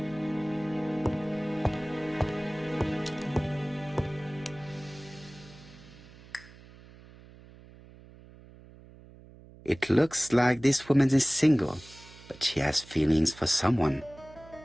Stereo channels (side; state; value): right; noise; hum, 21 dB below the sound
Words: It looks like this woman is single, but she has feelings for someone.